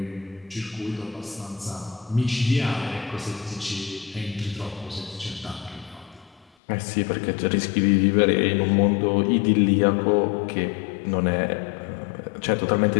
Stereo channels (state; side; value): drops out; right; at 6.5 s